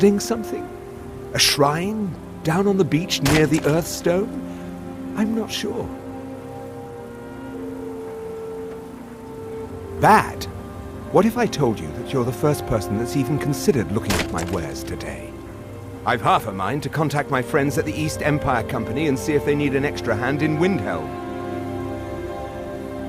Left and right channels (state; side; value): identical; both; correlation 1.00